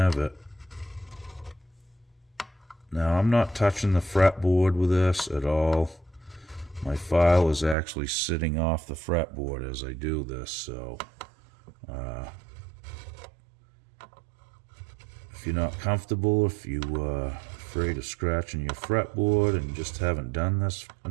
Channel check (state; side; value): drops out; left; at 7.8 s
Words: it. Now, I'm not touching the fretboard with this at all. My file is actually sitting off the fretboard as I do this, so if you're not comfortable, if you're afraid of scratching your fretboard and just haven't done this